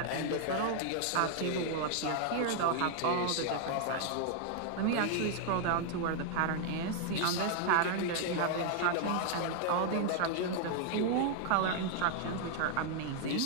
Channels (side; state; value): both; different; correlation 0.00